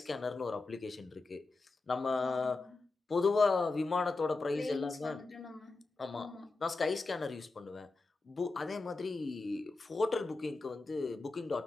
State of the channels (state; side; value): quieter; right; 3.6 dB